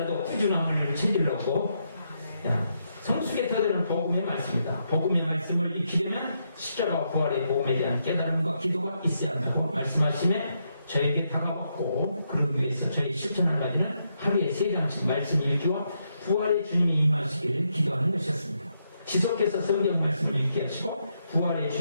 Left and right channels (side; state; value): both; inverted; correlation -0.80